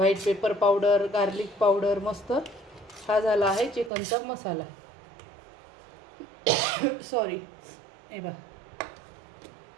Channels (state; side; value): drops out; left; at 3.9 s